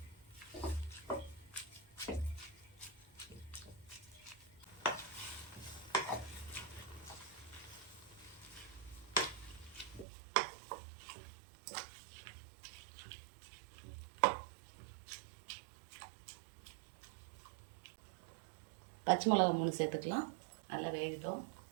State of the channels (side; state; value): left; drops out; at 10.1 s